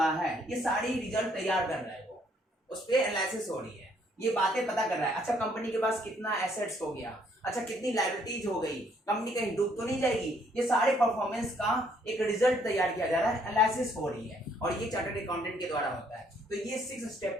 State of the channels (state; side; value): normal; both; correlation 0.67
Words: है, ये सारी रिजल्ट तैयार कर रहा है वो, उस पर एनालिसिस हो रही है, ये बातें पता कर रहा है। अच्छा कंपनी के पास कितना एसेट्स हो गया, अच्छा कितनी लायबिलिटीज हो गई, कंपनी कहीं डूब तो नहीं जाएगी, ये सारे परफॉर्मेंस का एक रिजल्ट तैयार किया जा रहा है, एनालिसिस हो रही है, और ये चार्टर्ड अकाउंटेंट के द्वारा होता है। तो ये 6 स्टेप